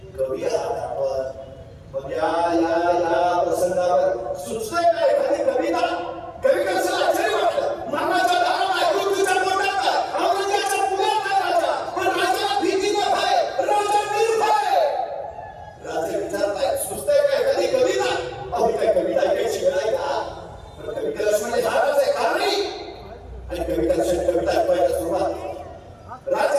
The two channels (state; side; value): identical; both; correlation 1.00